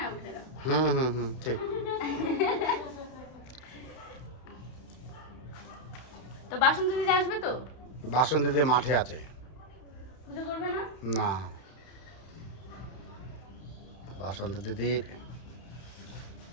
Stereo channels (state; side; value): late; right; 31 ms